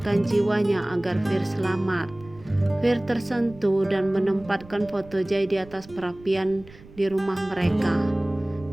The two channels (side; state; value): right; noise; rumble, 21 dB below the sound